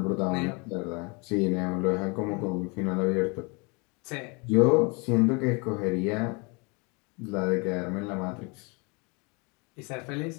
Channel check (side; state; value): right; quieter; 30.6 dB